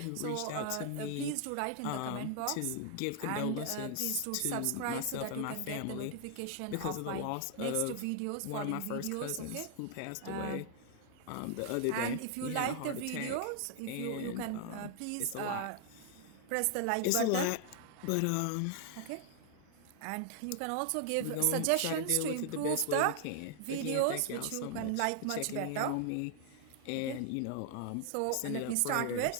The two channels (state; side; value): different; both; correlation 0.00